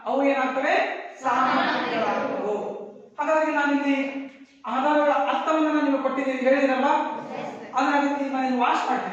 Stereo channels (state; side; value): identical; both; correlation 1.00